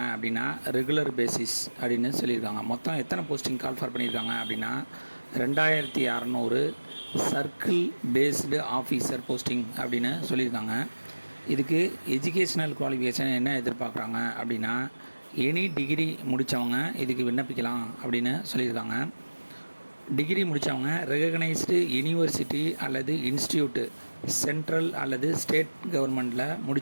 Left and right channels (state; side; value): inverted; both; correlation -1.00